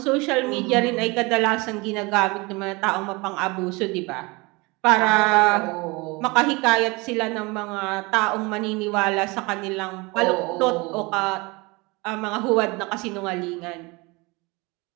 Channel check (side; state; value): left; quieter; 25.6 dB